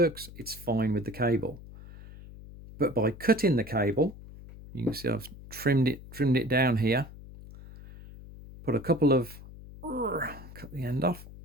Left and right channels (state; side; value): noise; left; hum, 16 dB below the sound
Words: It's fine with the cable. But by cutting the cable, you can see I've trimmed it down here. Put a couple of, cut the end off.